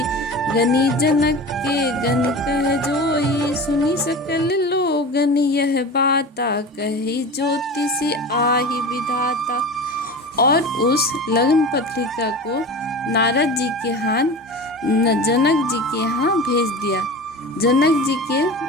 गनी जनक के गन कह जोई। सुनी सकल लोगन यह बाता, कही ज्योतिषी आहि विधाता। और उस लग्न पत्रिका को नारद जी के हाथ जनक जी के यहाँ भेज दिया। जनक जी के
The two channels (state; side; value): normal; both; correlation 0.32